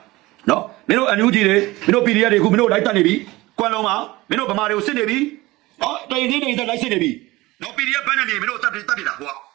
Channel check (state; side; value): quieter; left; 19.9 dB